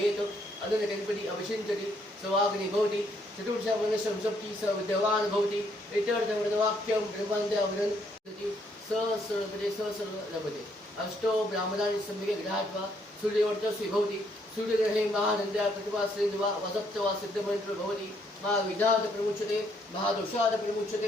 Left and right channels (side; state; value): both; normal; correlation 0.70